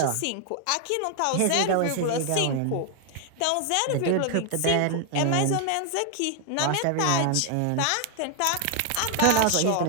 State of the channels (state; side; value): different; both; correlation 0.00